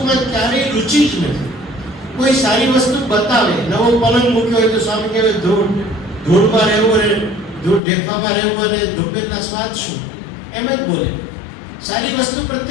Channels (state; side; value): drops out; right; at 7.8 s